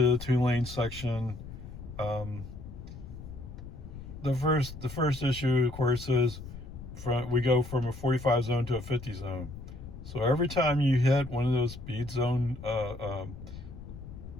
the 2-lane section. The first issue, of course, is we go from a 45 zone to a 50 zone. So every time you hit one of those speed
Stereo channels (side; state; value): left; noise; rumble, 13 dB below the sound